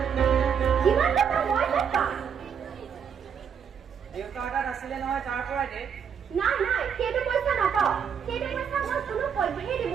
কিমান টকা মই নাপাম দেউতাৰ তাত আছিলে নহয় তাৰ পৰা দে নাই নাই সেইটো পইচা নাপাওঁ সেইটো পইচা মই কোনো পধ্যেই দিব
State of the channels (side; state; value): left; quieter; 7.4 dB